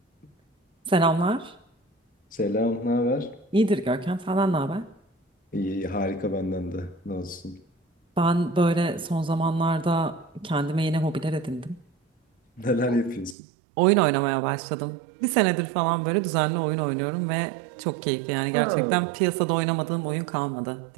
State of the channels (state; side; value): drops out; left; at 13.4 s